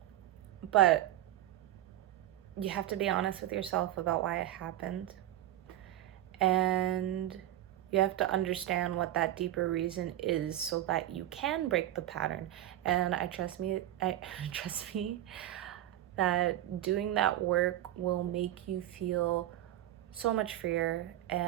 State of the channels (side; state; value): left; quieter; 13.4 dB